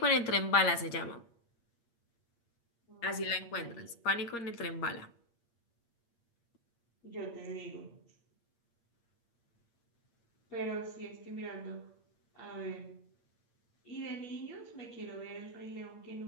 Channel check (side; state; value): right; late; 8.6 ms